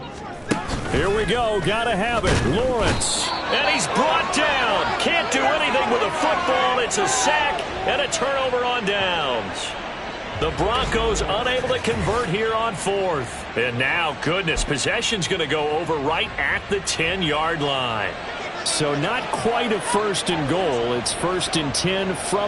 Here we go. Got to have it. Lawrence. And he's brought down. Can't do anything with a football. It's a sack and a turnover on downs. The Broncos unable to convert here on 4th. And now, goodness, possession's going to go over right at the 10-yard line. So not quite a 1st and goal. It's 1st and 10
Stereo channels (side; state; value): both; identical; correlation 1.00